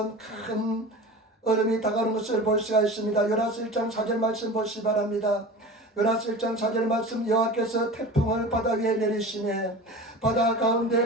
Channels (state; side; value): normal; both; correlation 0.34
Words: 큰 얼음이 다가오는 것을 볼 수가 있습니다. 요나서 1장 4절 말씀 보시기 바랍니다. 요나서 1장 4절 말씀, 여호와께서 태풍을 바다 위에 내리시매 바다